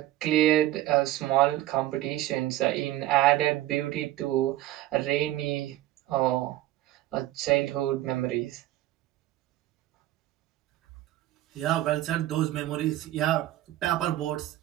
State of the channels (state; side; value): quieter; left; 14.9 dB